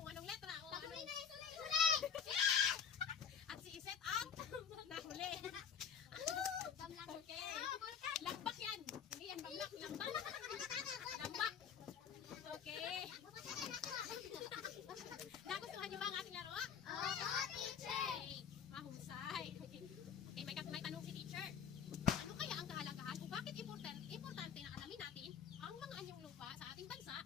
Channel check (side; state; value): right; quieter; 7.5 dB